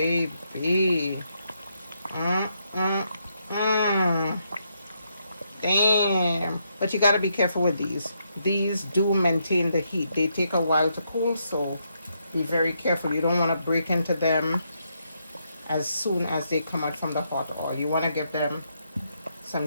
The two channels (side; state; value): both; inverted; correlation -0.78